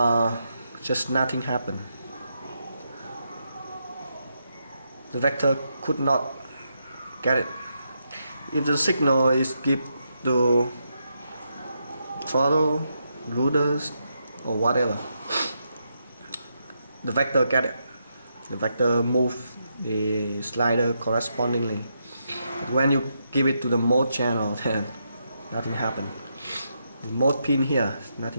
just nothing happened. The vector could not get it. If the signal is given to throttle, rudders, or whatever, the vector get it. The vector move the slider correspondingly. But when you give it to the mode channel, then nothing happened. The mode pin here,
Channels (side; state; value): both; inverted; correlation -0.81